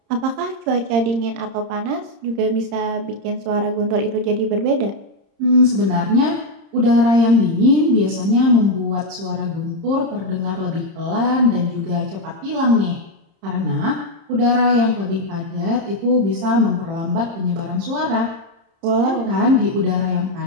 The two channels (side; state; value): left; late; 30 ms